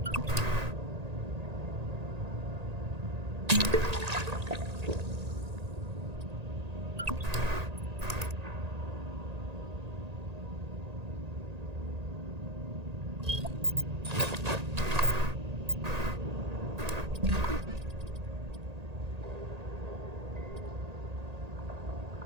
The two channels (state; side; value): late; left; 1.8 ms